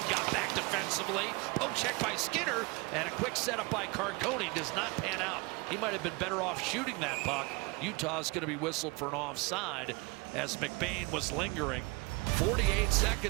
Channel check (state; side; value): quieter; left; 26.1 dB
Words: got back defensively. Poke check by Skinner, and a quick setup by Carconi does not pan out. He might have been better off shooting that puck. Utah's going to be whistled for an offside as McBain was lingering. 48